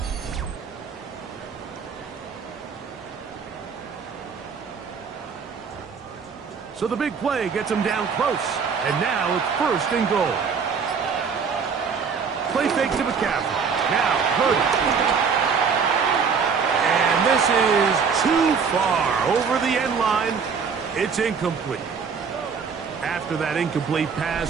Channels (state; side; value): quieter; left; 5.9 dB